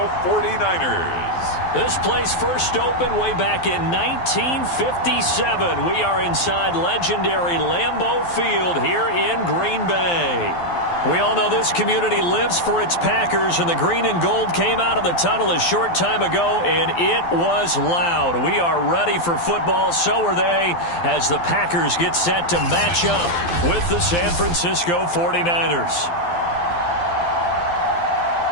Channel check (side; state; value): right; late; 12 ms